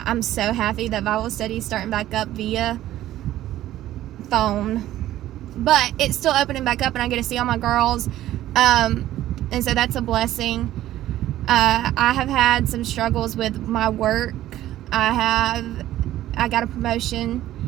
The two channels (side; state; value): left; quieter; 13.8 dB